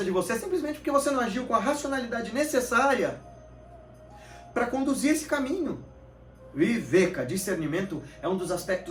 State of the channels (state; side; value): identical; both; correlation 1.00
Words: de você, é simplesmente porque você não agiu com a racionalidade necessária para conduzir esse caminho. Viveka, discernimento, é um dos